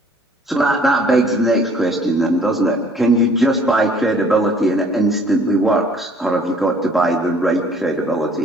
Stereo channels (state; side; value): normal; both; correlation 0.56